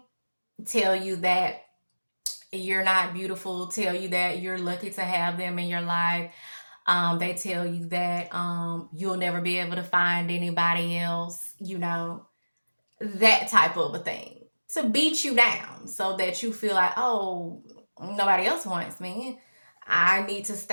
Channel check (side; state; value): both; inverted; correlation -1.00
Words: tell you that you're not beautiful, tell you that you're lucky to have them in your life. They tell you that you'll never be able to find anybody else, that type of a thing. To beat you down so that you feel like, oh, nobody else wants me. I need to